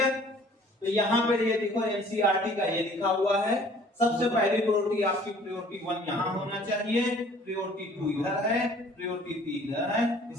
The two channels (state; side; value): normal; both; correlation 0.53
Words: तो यहाँ पे ये देखो एनसीईआरटी का ये लिखा हुआ है। सबसे पहली प्रायोरिटी आपकी प्रायोरिटी 1 यहाँ होना चाहिए, प्रायोरिटी 2 इधर है, प्रायोरिटी 3 इधर है,